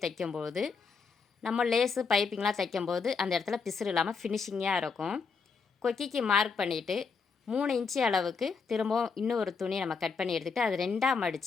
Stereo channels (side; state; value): right; quieter; 5.2 dB